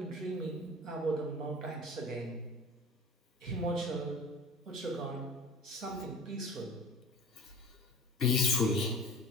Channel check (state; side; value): normal; both; correlation 0.38